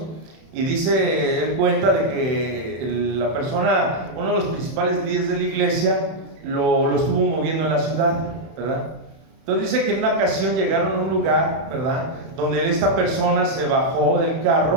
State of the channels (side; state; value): left; late; 31 ms